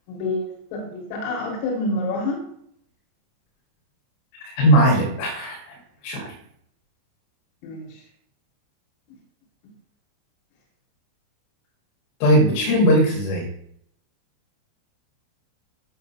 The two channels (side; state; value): right; late; 29 ms